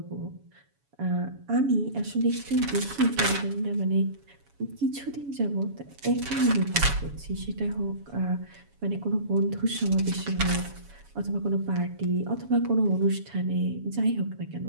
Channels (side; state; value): left; late; 7.1 ms